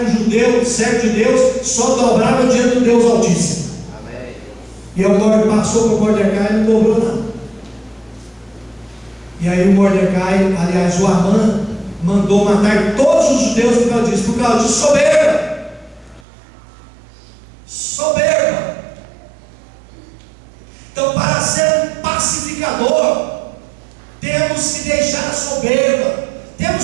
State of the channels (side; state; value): left; drops out; at 16.2 s